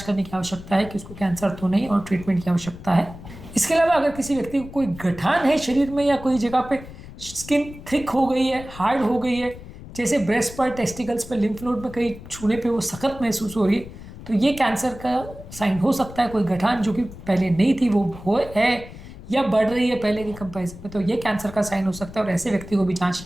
करने की आवश्यकता है कि उसको कैंसर तो नहीं और ट्रीटमेंट की आवश्यकता है। इसके अलावा अगर किसी व्यक्ति को कोई गठान है शरीर में या कोई जगह पे स्किन थिक हो गई है, हार्ड हो गई है, जैसे ब्रेस्ट पर, टेस्टिकल्स पर, लिम्फ नोड में कहीं छूने पे वो सख्त महसूस हो रही है, तो ये कैंसर का साइन हो सकता है। कोई गठान जो कि पहले नहीं थी वो हो है या बढ़ रही है पहले के कंपैरिजन में, तो ये कैंसर का साइन हो सकता है और ऐसे व्यक्ति को भी जांच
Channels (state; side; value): noise; left; rumble, 15 dB below the sound